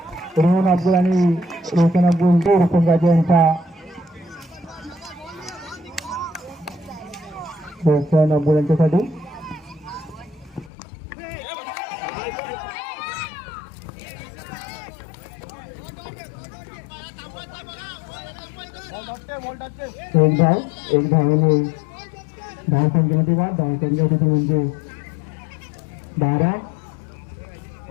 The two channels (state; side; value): drops out; right; at 10.7 s